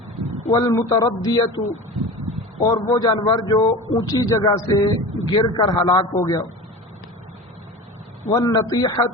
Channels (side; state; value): both; normal; correlation 0.32